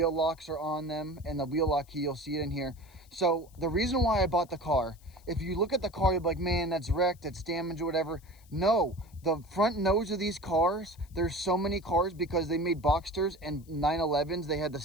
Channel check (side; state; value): left; noise; hiss, 28 dB below the sound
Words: locks are on them, and the wheel lock key, you'll see it in here. So the reason why I bought the car, if you look at the car, you're like, man, that's wrecked, it's damaged or whatever. No, the front nose of these cars, there's so many cars because they made Boxsters and 911s. They had the